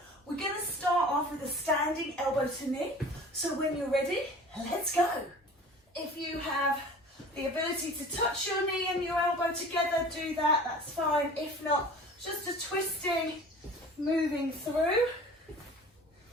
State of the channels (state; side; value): normal; both; correlation 0.42